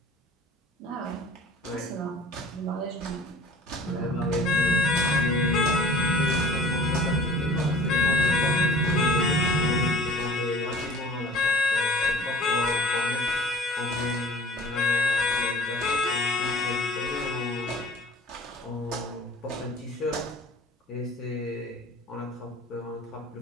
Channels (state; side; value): normal; both; correlation 0.45